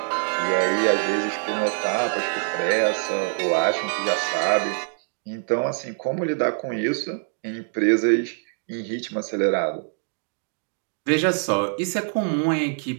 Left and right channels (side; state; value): left; silent; 56 dB below the other